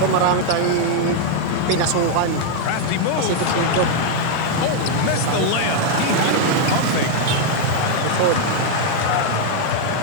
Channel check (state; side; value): different; both; correlation 0.00